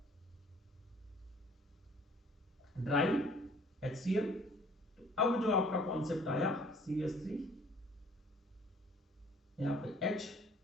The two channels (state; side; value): normal; both; correlation 0.55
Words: ड्राई HCl। तो अब जो आपका कॉन्सेप्ट आया CH3, यहां पे H,